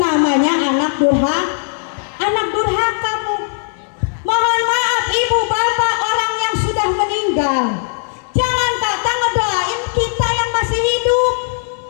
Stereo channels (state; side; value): silent; right; digital silence